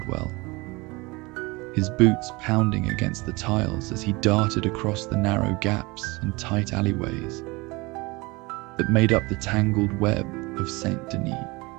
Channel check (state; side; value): quieter; left; 24.3 dB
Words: his boots pounding against the tiles as he darted across the narrow gaps and tight alleyways that made up the tangled web of Saint Denis.